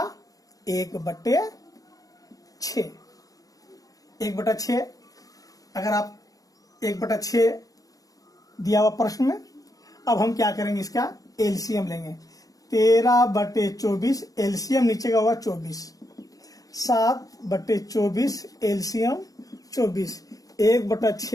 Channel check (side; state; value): right; late; 0.17 ms